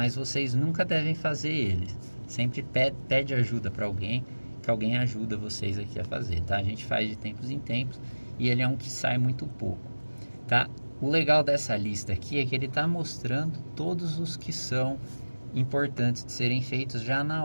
vocês nunca devem fazer ele. Sempre pede ajuda para alguém, que alguém ajuda vocês aqui a fazer, tá? A gente faz de tempos em tempos e ele é um que sai muito pouco, tá? O legal dessa lista aqui é que ele está mostrando todos os que são importantes de serem feitos já na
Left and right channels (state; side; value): inverted; both; correlation -1.00